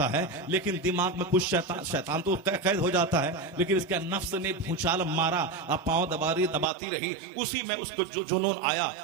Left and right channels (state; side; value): drops out; left; at 6.7 s